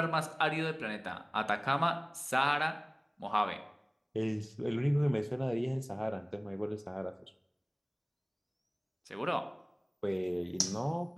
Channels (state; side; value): identical; both; correlation 1.00